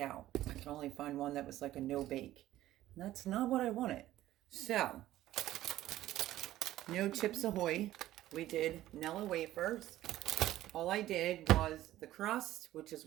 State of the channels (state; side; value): quieter; left; 14.4 dB